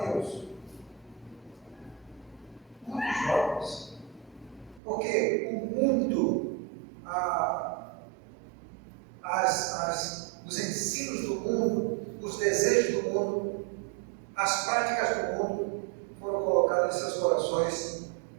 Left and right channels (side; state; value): left; drops out; at 4.8 s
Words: Muitos jovens. Porque o mundo, os ensinos do mundo, os desejos do mundo, as práticas do mundo foram colocadas em seus corações